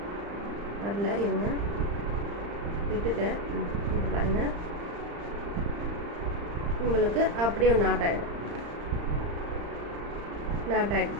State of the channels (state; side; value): late; left; 35 ms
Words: வரல, இருங்க விட்டுட்டேன். இது பாருங்கள் உங்களுக்கு அப்படியே நாட் ஆகிடும். நாட்